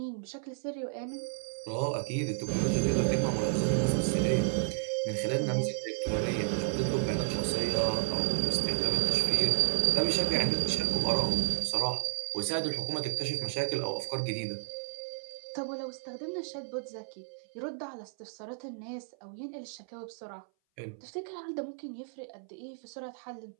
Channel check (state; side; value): silent; left; 56 dB below the other